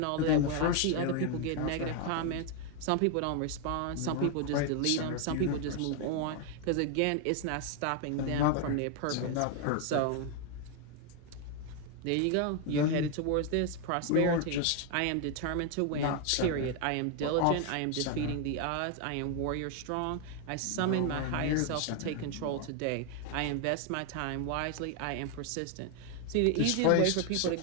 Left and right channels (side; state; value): both; different; correlation 0.01